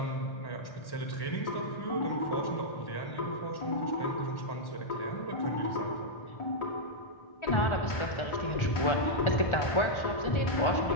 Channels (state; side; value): late; right; 1.4 ms